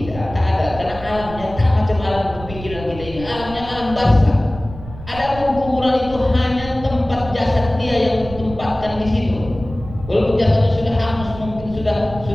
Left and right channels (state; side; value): noise; right; rumble, 14 dB below the sound